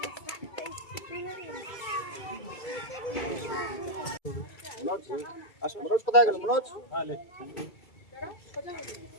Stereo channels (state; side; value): late; right; 2.3 ms